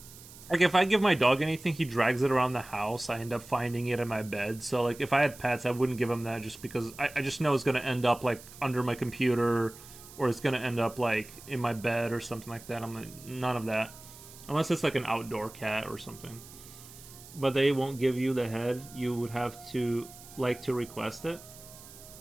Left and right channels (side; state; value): right; noise; hiss, 18 dB below the sound